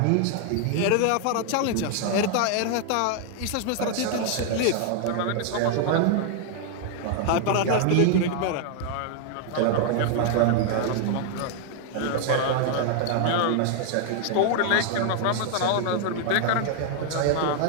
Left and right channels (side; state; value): both; different; correlation 0.00